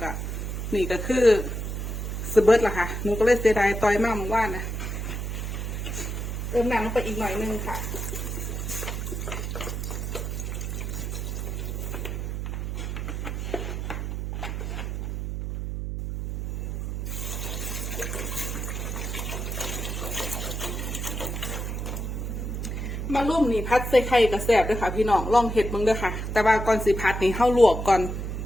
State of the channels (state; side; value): noise; right; hum, 4 dB below the sound